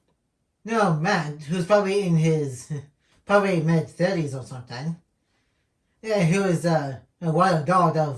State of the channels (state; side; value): identical; both; correlation 1.00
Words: No, man, who's probably in his mid-30s or something. Who is a wild dog